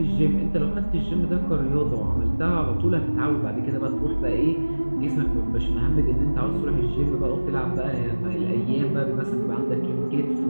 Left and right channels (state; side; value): inverted; both; correlation -1.00